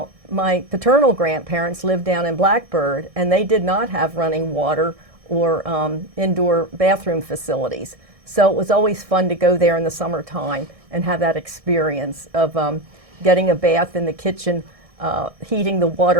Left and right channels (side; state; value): left; late; 1.6 ms